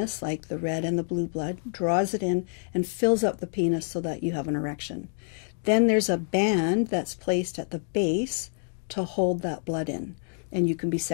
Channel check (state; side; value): silent; right; digital silence